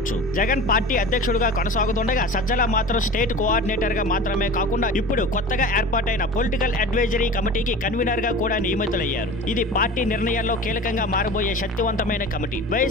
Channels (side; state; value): both; normal; correlation 0.36